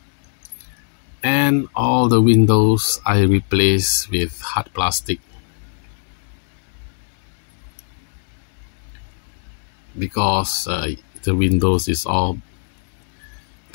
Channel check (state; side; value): silent; right; 65 dB below the other